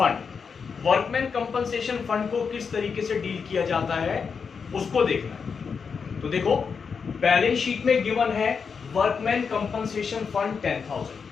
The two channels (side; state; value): right; quieter; 5.8 dB